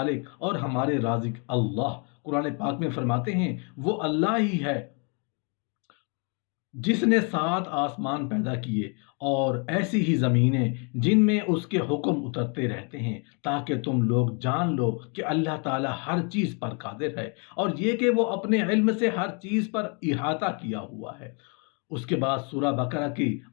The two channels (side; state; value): right; quieter; 36.3 dB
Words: और हमारे राज़िक अल्लाह कुरान पाक में फरमाते हैं, वो अल्लाह ही है जिसने सात आसमान पैदा किए और ऐसी ही ज़मीनें जिनमें उसके हुक्म उतरते रहते हैं, ताकि तुम लोग जान लो कि अल्लाह ताला हर चीज़ पर कादिर है और ये कि वो अपने इल्म से हर चीज़ पर इहाता किया हुआ है। उसके बाद सूरह बकरा के